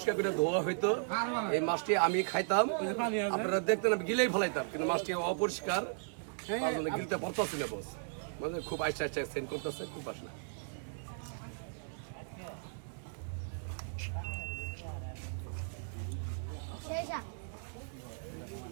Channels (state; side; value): silent; left; 54 dB below the other